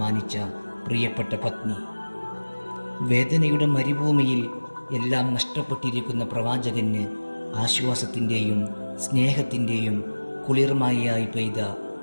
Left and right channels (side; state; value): both; inverted; correlation -1.00